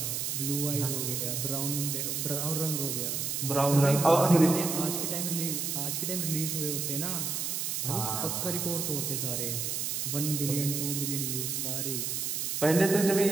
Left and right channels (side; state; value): right; noise; hiss, 1 dB below the sound